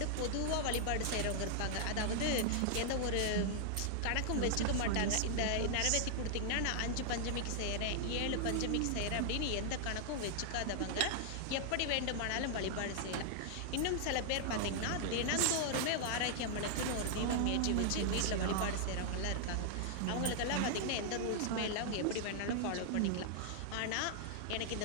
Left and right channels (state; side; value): different; both; correlation -0.01